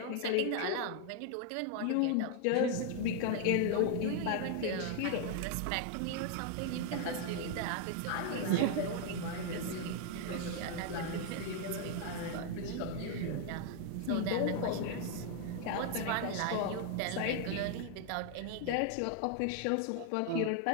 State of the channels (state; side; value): different; both; correlation 0.00